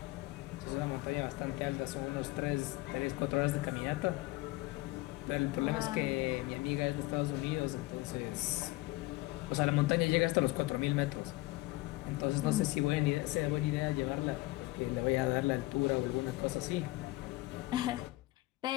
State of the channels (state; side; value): quieter; right; 19.9 dB